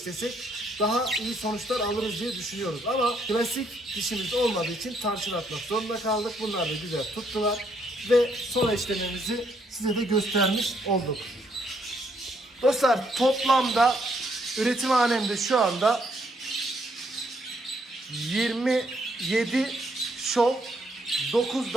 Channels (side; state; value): both; normal; correlation 0.72